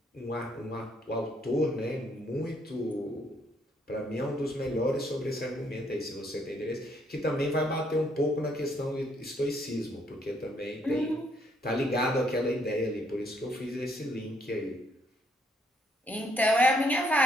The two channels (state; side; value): normal; both; correlation 0.70